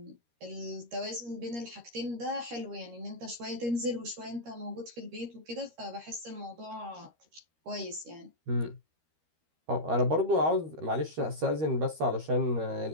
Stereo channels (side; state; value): left; late; 13 ms